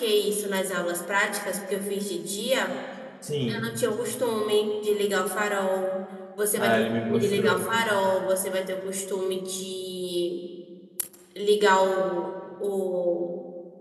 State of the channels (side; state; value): both; identical; correlation 1.00